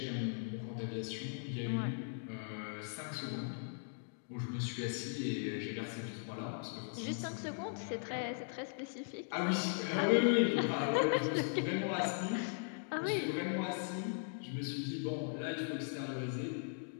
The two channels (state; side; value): silent; right; digital silence